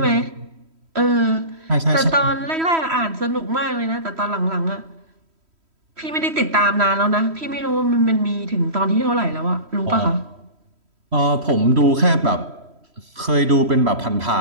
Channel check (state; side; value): late; left; 3.1 ms